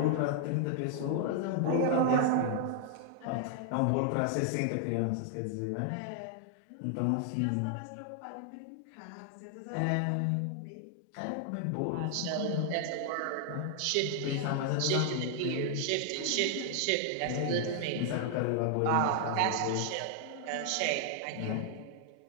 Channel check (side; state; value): both; different; correlation 0.00